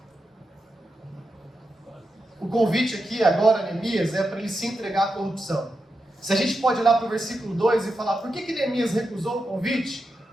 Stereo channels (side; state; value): both; normal; correlation 0.88